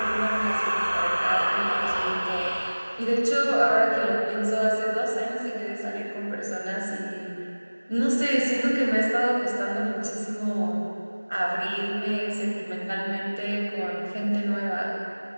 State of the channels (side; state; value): both; inverted; correlation -1.00